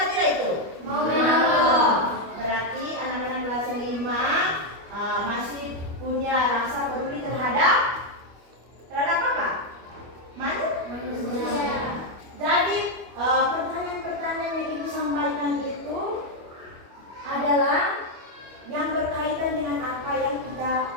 tidak itu? Mau menolong. Berarti anak-anak kelas 5 masih punya rasa peduli terhadap apa? Manusia. Jadi pertanyaan-pertanyaan yang Ibu sampaikan itu adalah yang berkaitan dengan apa yang kita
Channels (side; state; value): left; late; 25 ms